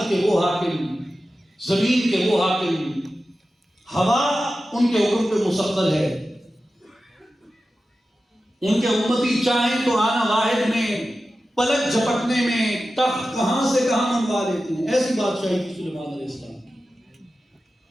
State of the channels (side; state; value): both; normal; correlation 0.93